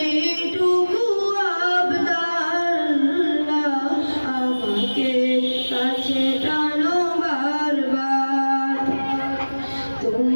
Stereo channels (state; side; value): inverted; both; correlation -1.00